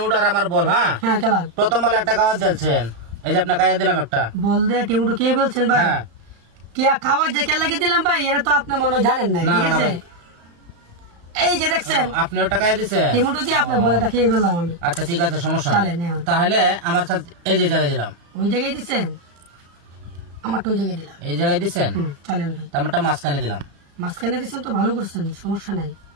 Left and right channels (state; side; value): late; left; 35 ms